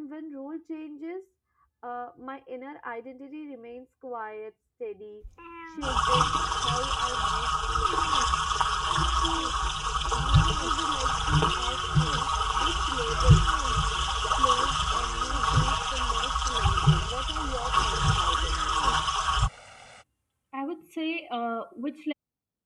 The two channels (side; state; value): both; identical; correlation 1.00